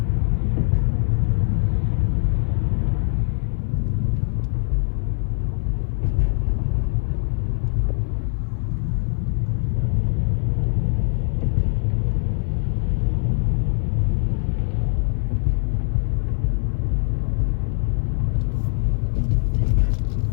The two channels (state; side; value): silent; right; 57 dB below the other